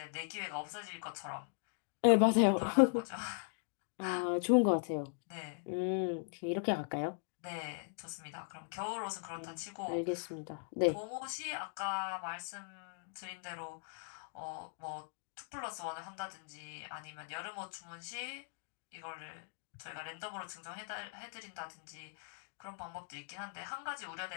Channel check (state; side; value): silent; right; digital silence